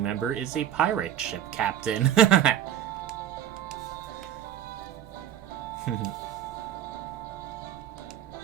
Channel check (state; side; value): quieter; left; 10.8 dB